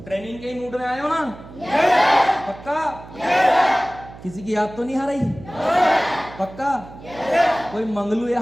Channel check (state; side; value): noise; right; hum, 17 dB below the sound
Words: ट्रेनिंग के मूड में आए हो ना? पक्का? किसी की याद तो नहीं आ रही? पक्का? कोई मंगलू